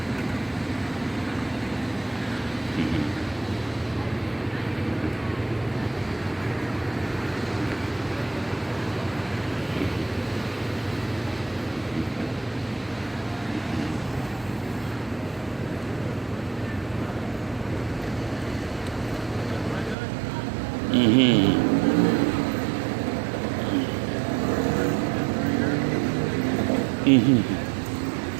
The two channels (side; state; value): left; drops out; at 20.0 s